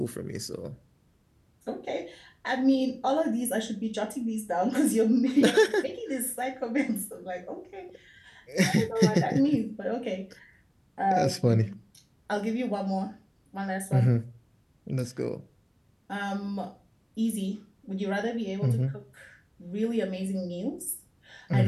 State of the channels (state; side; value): identical; both; correlation 1.00